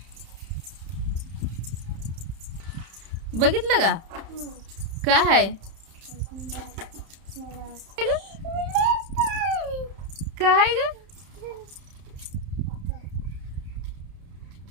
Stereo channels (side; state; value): left; late; 31 ms